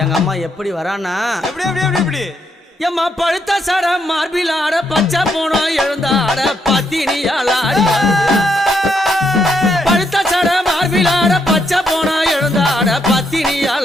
எங்க அம்மா எப்படி வரானா எப்படி எப்படி எப்படி எப்படி எம்மா பழுத்த சட மார்பில் ஆட பச்சை போனோம் எழுந்தாட பத்தினியால் ஆடி பழுத்த சட மார்பில் ஆட பச்சை போனோம் எழுந்தாட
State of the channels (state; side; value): normal; both; correlation 0.76